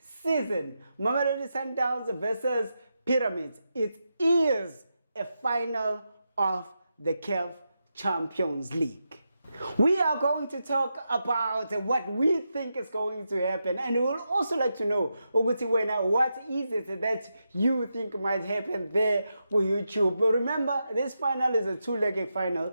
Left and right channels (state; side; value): inverted; both; correlation -0.86